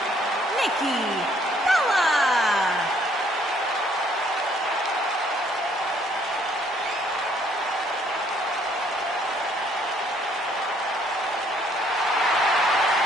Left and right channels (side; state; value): both; normal; correlation 0.65